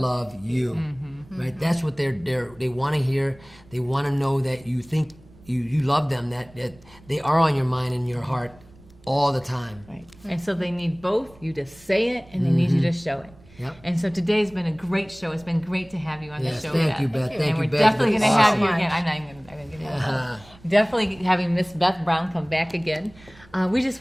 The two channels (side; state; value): right; noise; rumble, 25 dB below the sound